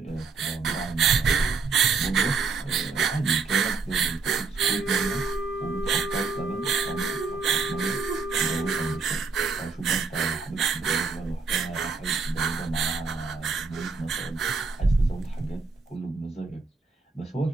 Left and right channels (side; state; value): left; quieter; 4.6 dB